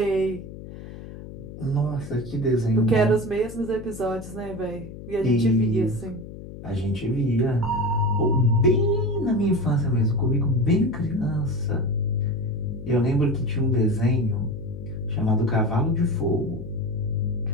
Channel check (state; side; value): noise; left; hum, 13 dB below the sound